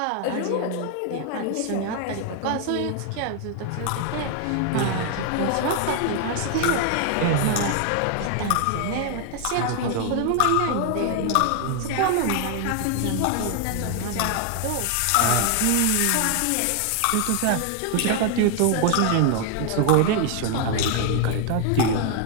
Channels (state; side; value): different; both; correlation 0.00